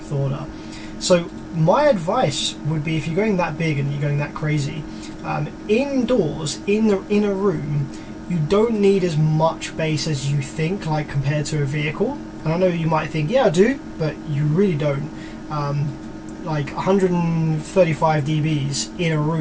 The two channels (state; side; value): identical; both; correlation 1.00